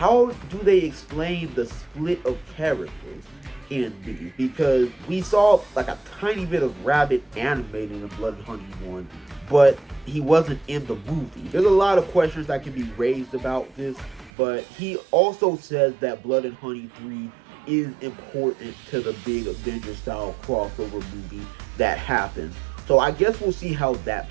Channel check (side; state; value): left; drops out; at 14.3 s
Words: do they explain the split of characters in these? Because we saw like a tiny bit of Rabbit animated in Blood and Honey 1, but he wasn't in the movie. There's a lot of questions that can be raised about this, but he also says that Blood and Honey 3 is important to the big Avengers style crossover movie that happens. So I guess we'll see how that